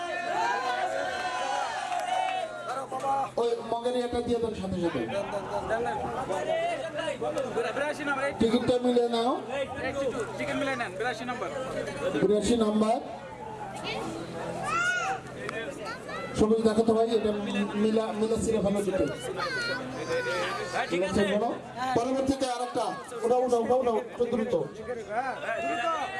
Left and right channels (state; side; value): identical; both; correlation 1.00